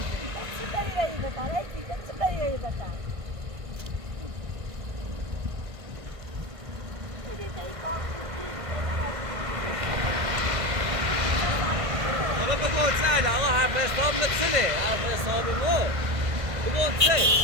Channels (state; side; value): late; left; 1.6 ms